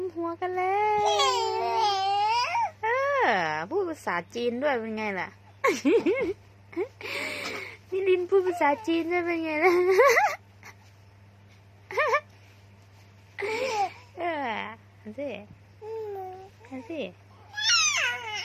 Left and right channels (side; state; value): both; identical; correlation 1.00